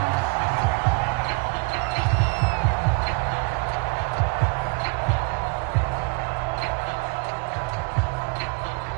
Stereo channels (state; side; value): quieter; left; 32.0 dB